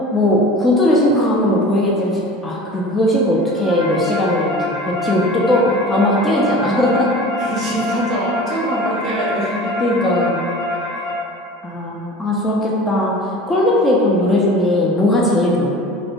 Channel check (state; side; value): normal; both; correlation 0.40